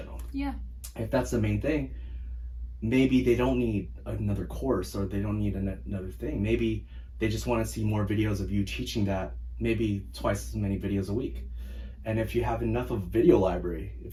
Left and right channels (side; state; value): both; identical; correlation 1.00